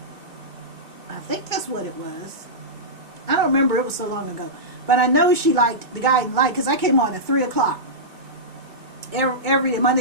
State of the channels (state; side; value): late; left; 2.3 ms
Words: I think that's what it was. I don't remember. It was so long ago. But I know she liked The Guiding Light because I came on at 3 o'clock. Every day,